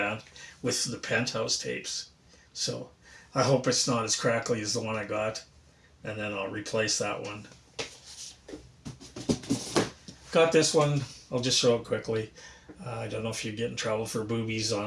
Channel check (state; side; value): identical; both; correlation 1.00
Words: with the Penthouse tapes. So I hope it's not as crackly as the one I got, and then I'll replace that one. Got this one. I'll just show it quickly. I don't know if you get in trouble for boobies